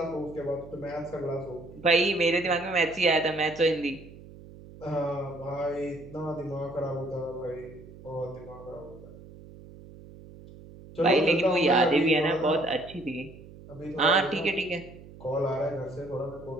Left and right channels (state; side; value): noise; right; hum, 18 dB below the sound